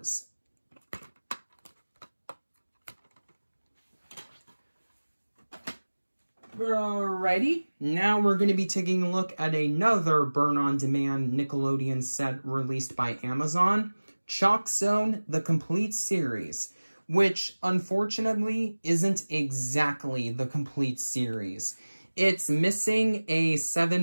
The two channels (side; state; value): both; inverted; correlation -1.00